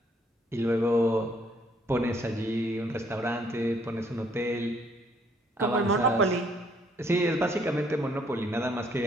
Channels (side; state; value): both; normal; correlation 0.66